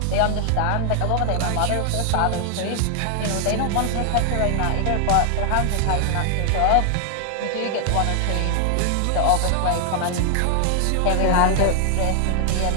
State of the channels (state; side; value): different; both; correlation 0.00